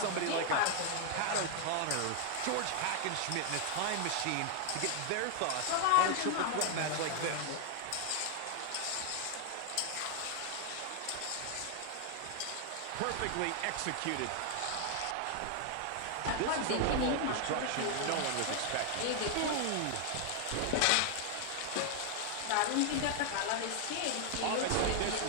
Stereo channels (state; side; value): different; both; correlation 0.00